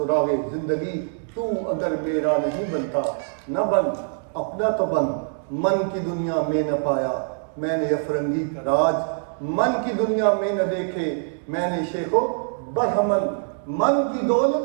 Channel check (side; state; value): left; silent; digital silence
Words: زندگی, تو اگر میرا نہیں بنتا نہ بن, اپنا تو بن. من کی دنیا میں نہ پایا میں نے افرنگی کا راج, من کی دنیا میں نہ دیکھے میں نے شیخ و برہمن. من کی